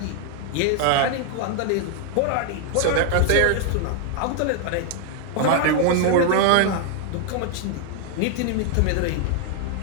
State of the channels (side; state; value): both; different; correlation 0.00